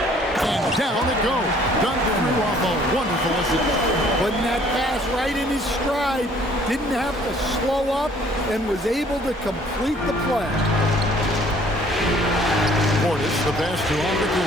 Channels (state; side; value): normal; both; correlation 0.58